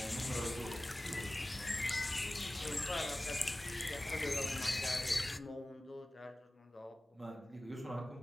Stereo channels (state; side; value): normal; both; correlation 0.97